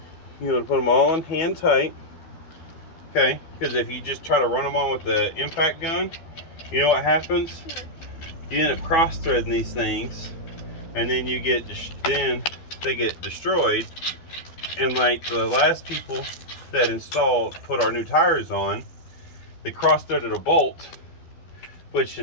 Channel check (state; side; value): late; right; 12 ms